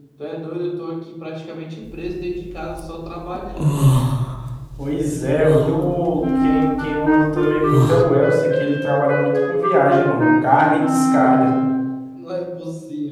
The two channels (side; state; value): both; identical; correlation 1.00